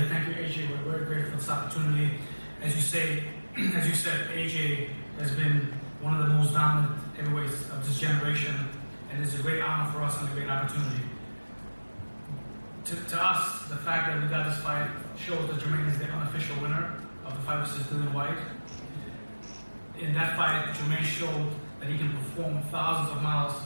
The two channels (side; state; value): both; inverted; correlation -1.00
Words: Thank you, AJ. We're very grateful for this opportunity. As you said, AJ has been one of the most dominant heavyweights of this generation, and it's a great honor for us and a great opportunity. To us, the fact that we got this fight shows that Jermaine is the unofficial winner of the fight versus Dillian Whyte. In that fight, Jermaine showed that he can perform thousands of miles